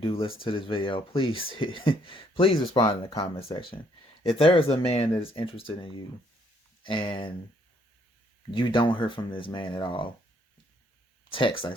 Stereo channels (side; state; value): both; normal; correlation 0.68